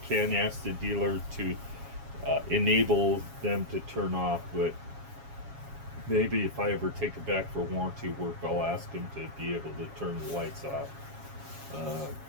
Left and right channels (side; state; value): left; late; 7.3 ms